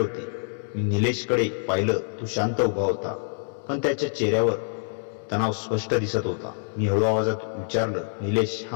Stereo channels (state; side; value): silent; right; 61 dB below the other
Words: मी निलेशकडे पाहिलं. तो शांत उभा होता, पण त्याच्या चेहऱ्यावर तणाव स्पष्ट दिसत होता. मी हळू आवाजात विचारलं, निलेश,